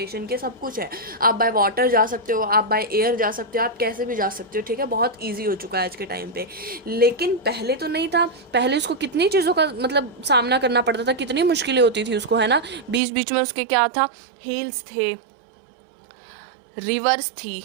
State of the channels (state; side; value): drops out; left; at 13.0 s